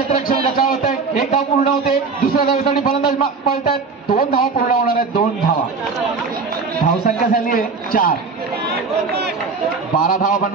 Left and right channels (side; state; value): left; quieter; 4.6 dB